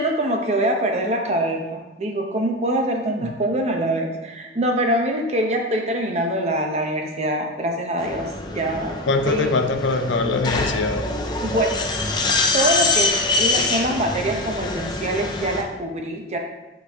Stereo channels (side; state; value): both; normal; correlation 0.17